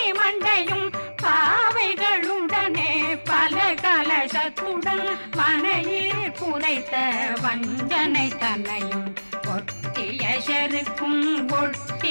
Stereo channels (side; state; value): both; inverted; correlation -1.00